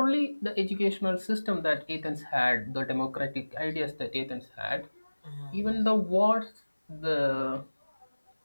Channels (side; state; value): both; inverted; correlation -1.00